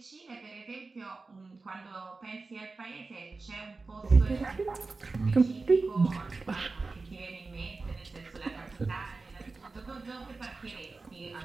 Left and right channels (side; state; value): left; quieter; 3.8 dB